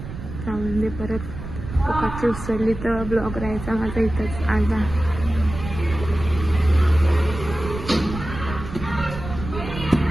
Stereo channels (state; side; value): noise; right; rumble, 9 dB below the sound